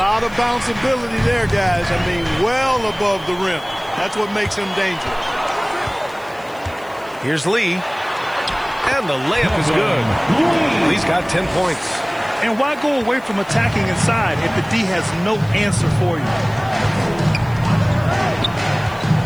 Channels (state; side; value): noise; left; hiss, 26 dB below the sound